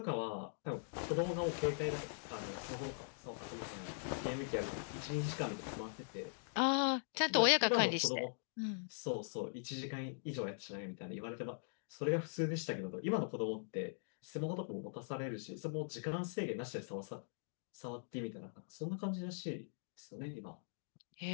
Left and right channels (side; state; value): right; silent; digital silence